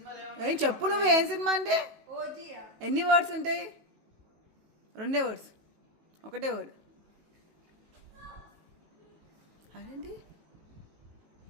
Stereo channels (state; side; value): late; left; 18 ms